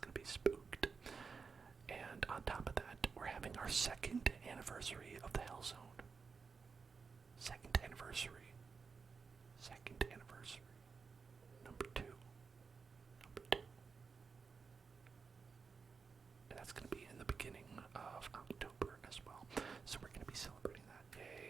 be spooked. And on top of that, we're having our 2nd anniversary of the Hell Zone. 2nd anniversary. 2nd anniversary. Number 2. And that's going to be in the beginning of October as well. So we're going to be celebrating that.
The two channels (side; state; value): left; quieter; 5.2 dB